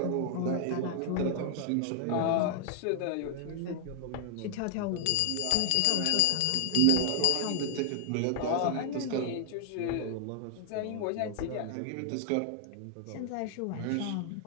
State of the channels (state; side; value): different; both; correlation 0.00